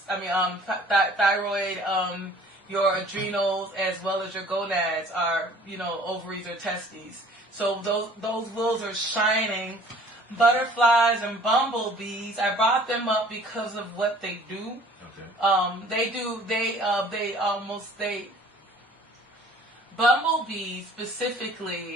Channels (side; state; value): both; normal; correlation 0.52